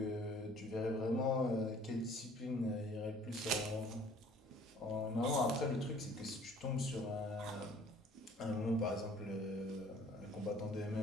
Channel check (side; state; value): both; normal; correlation 0.54